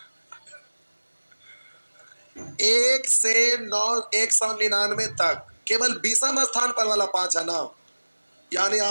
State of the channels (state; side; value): inverted; both; correlation -1.00